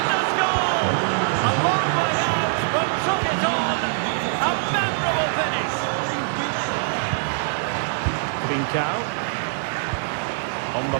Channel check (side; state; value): left; silent; digital silence